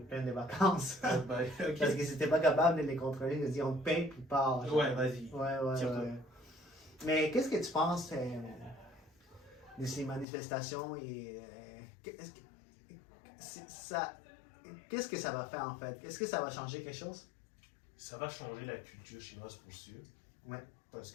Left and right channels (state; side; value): drops out; right; at 10.2 s